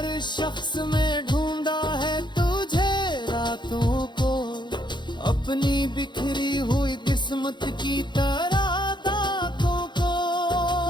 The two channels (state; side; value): late; right; 0.22 ms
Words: शख्स में ढूंढा है तुझे रातों को, अपनी बिखरी हुई किस्मत की तरह दागों को।